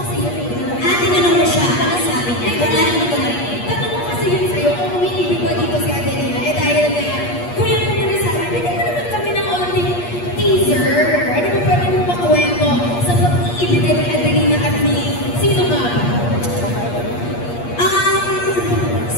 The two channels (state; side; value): late; right; 8.4 ms